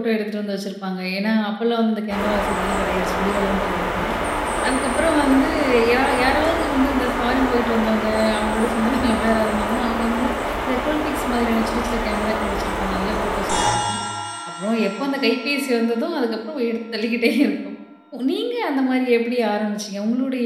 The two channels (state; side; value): identical; both; correlation 1.00